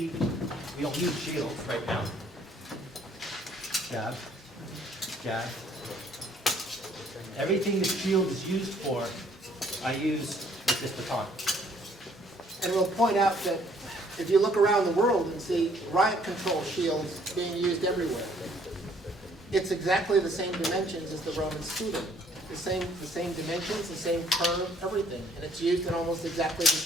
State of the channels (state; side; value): normal; both; correlation 0.62